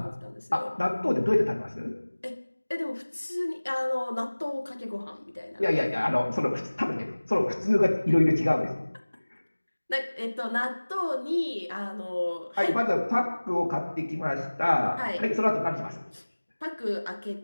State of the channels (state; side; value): inverted; both; correlation -1.00